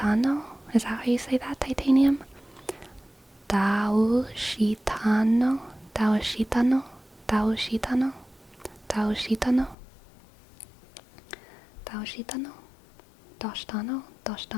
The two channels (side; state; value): right; drops out; at 9.8 s